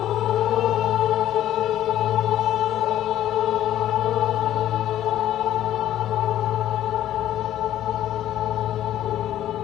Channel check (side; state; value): right; quieter; 12.3 dB